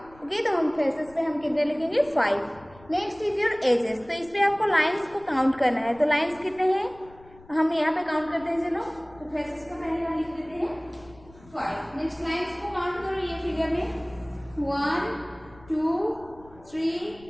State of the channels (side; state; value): left; noise; rumble, 24 dB below the sound